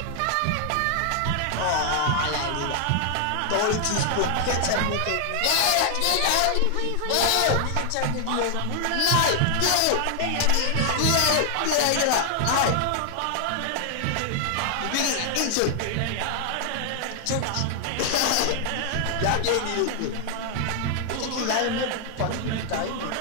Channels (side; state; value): both; different; correlation 0.00